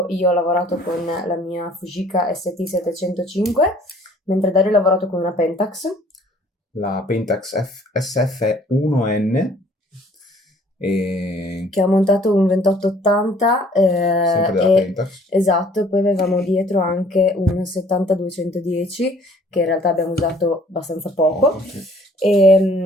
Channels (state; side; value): normal; both; correlation 0.56